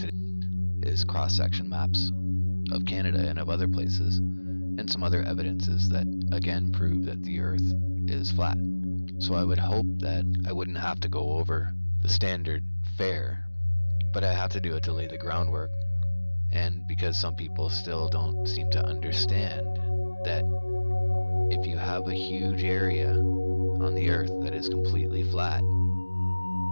is cross-section maps of Canada and of other places, and some other evidences that again prove that the Earth is flat. So I would hope that I wouldn't have to go over the standard fare, but I have to do it to lay the groundwork, and because some people still don't seem to understand that if you have a huge area on the Earth that is completely flat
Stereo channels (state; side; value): inverted; both; correlation -1.00